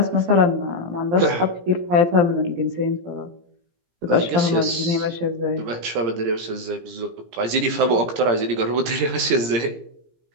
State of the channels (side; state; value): left; late; 17 ms